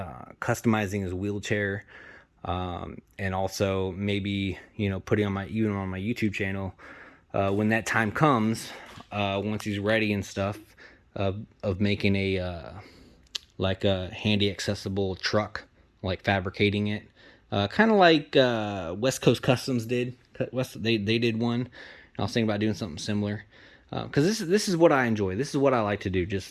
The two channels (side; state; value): both; identical; correlation 1.00